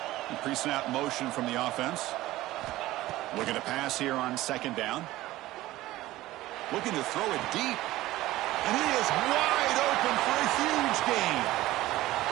Pre-snap motion from the offense. Looking to pass here on second down. Looking to throw it deep. And he is wide open for a huge gain.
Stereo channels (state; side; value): quieter; left; 16.7 dB